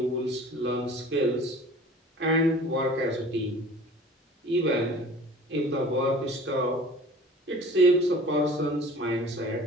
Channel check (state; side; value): normal; both; correlation 0.45